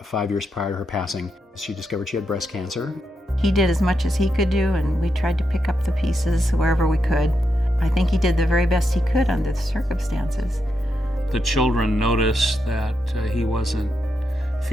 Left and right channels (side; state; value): both; normal; correlation 0.84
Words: 5 years prior to her passing, she discovered she had breast cancer. He did as much as he could do, and we tried to pick up the pieces wherever we could. I think he did the very best he could under the circumstances. The children noticed that he wasn't